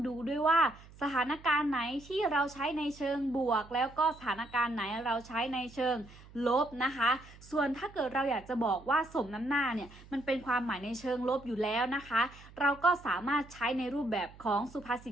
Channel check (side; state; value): right; noise; hum, 21 dB below the sound